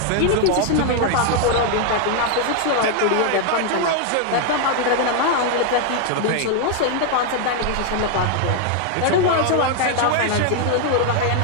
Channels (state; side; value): different; both; correlation 0.00